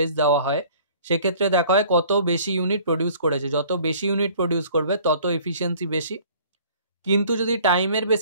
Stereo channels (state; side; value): inverted; both; correlation -0.52